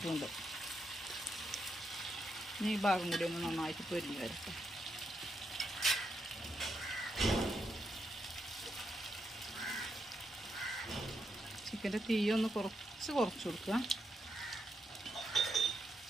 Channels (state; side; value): normal; both; correlation 0.82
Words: ഇനി ഈ ഭാഗം കൂടി ഒന്ന് നന്നായിട്ട് പൊരിഞ്ഞു വരട്ടെ. ചിക്കൻ്റെ തീയൊന്ന് കുറച്ച് കൊടുക്കുക.